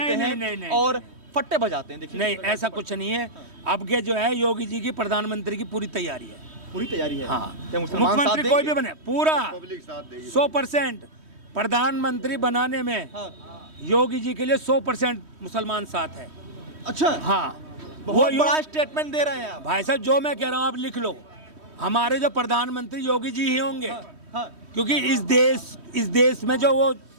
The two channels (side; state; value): left; late; 3.1 ms